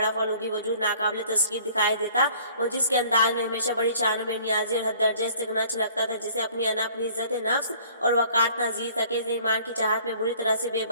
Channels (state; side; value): inverted; both; correlation -0.54